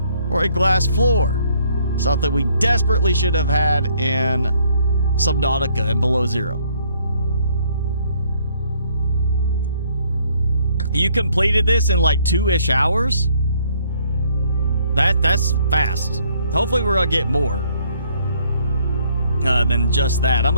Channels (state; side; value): inverted; both; correlation -0.66